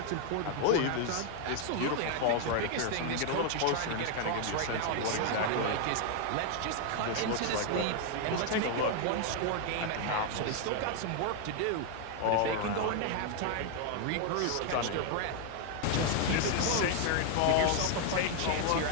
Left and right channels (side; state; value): both; different; correlation 0.00